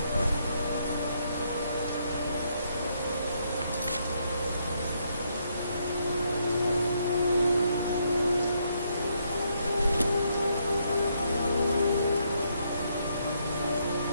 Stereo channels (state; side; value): inverted; both; correlation -0.75